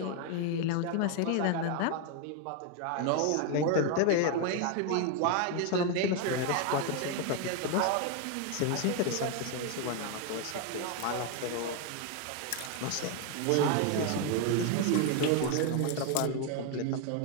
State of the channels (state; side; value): different; both; correlation 0.01